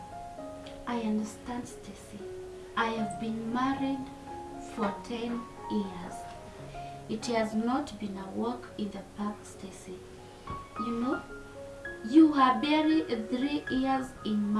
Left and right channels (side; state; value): both; identical; correlation 1.00